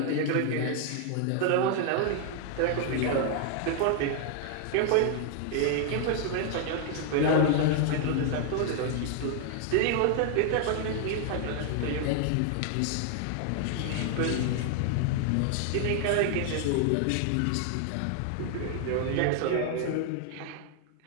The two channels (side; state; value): both; different; correlation 0.00